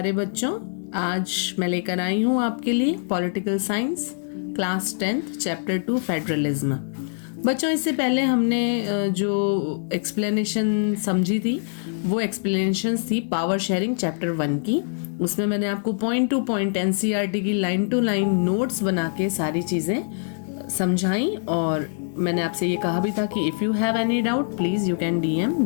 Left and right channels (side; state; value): right; silent; digital silence